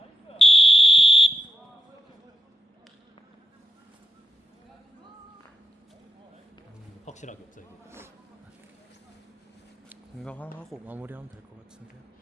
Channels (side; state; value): both; normal; correlation 0.88